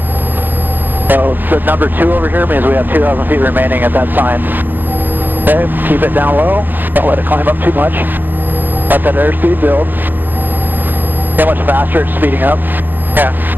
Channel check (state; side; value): late; left; 0.087 ms